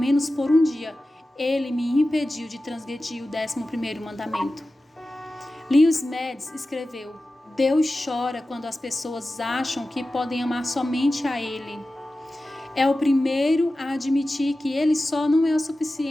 por um dia, Ele me impediu de transgredir o 11º mandamento. Lewis Mads escreveu: Deus chora quando as pessoas acham que podem amar somente a Ele. É o primeiro a admitir que Ele só não é o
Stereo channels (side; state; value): both; normal; correlation 0.95